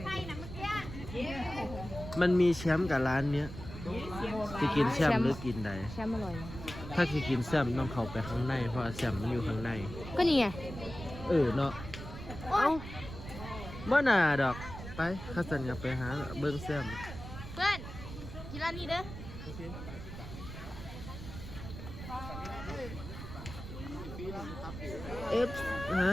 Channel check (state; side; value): noise; right; rumble, 10 dB below the sound